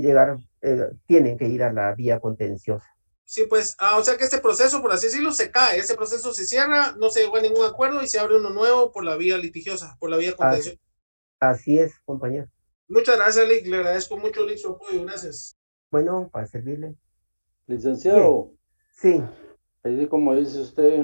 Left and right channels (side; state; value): both; inverted; correlation -1.00